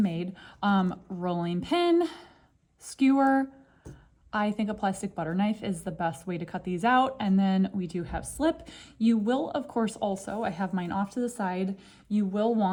Rolling pin, skewer, I think a plastic butter knife is the best way to cut these out. And then we do have slip. You will, of course, also, I have mine off to the side, you will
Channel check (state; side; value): identical; both; correlation 1.00